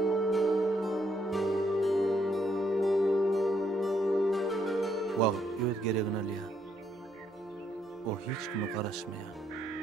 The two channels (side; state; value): both; normal; correlation 0.73